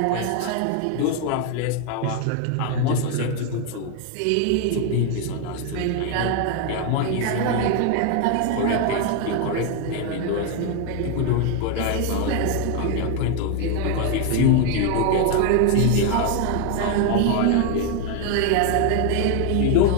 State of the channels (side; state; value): both; different; correlation 0.01